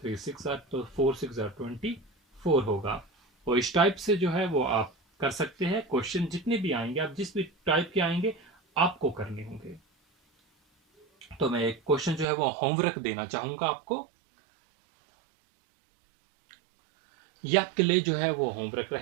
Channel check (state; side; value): drops out; left; at 12.2 s